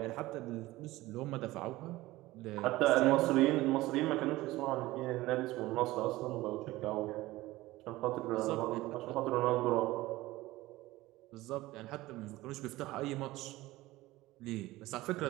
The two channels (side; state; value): left; quieter; 18.2 dB